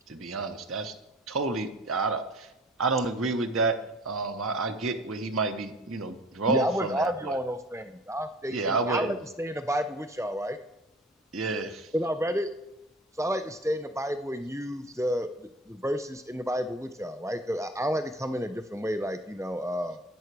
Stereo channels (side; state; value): both; normal; correlation 0.43